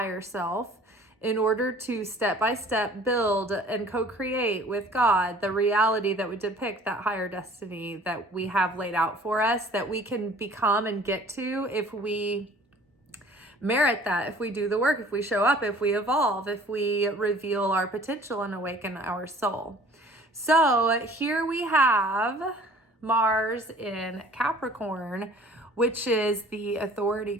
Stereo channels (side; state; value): both; normal; correlation 0.51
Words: self in order to step by step build and co-create with God the reality that would depict that higher destiny that we have laid out for us, that we can become and get to if we merit that, if we do the work, if we show up, if we evolve, if we reveal our potential and awaken our soul. So here we have Mars in Capricorn, which is the authority